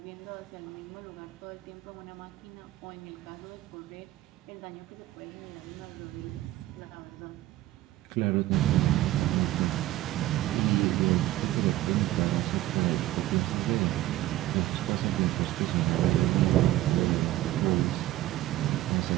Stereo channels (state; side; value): quieter; left; 15.2 dB